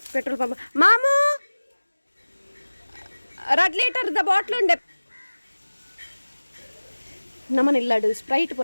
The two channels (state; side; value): inverted; both; correlation -1.00